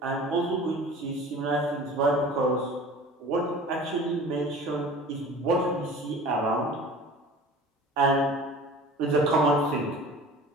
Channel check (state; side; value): normal; both; correlation 0.42